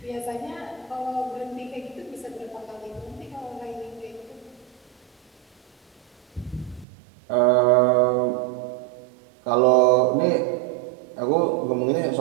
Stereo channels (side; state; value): left; drops out; at 6.9 s